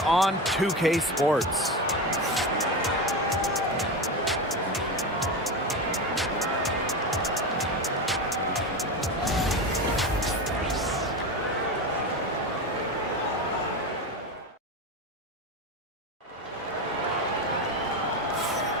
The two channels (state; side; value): normal; both; correlation 0.21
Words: on 2K Sports.